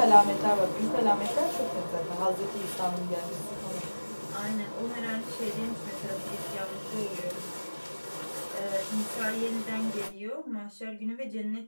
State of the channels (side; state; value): both; inverted; correlation -1.00